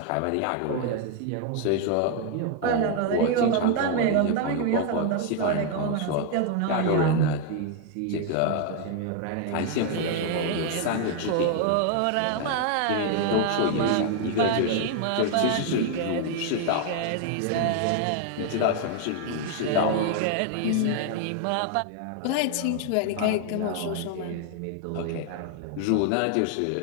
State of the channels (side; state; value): both; different; correlation 0.00